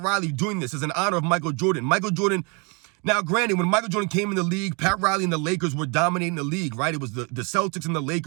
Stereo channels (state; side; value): quieter; left; 32.3 dB